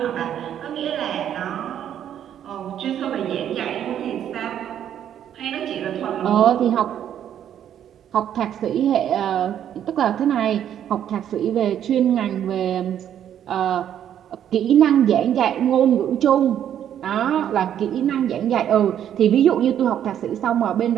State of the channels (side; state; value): left; quieter; 10.0 dB